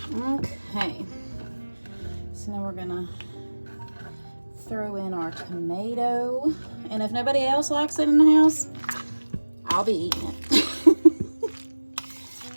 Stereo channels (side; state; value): both; inverted; correlation -1.00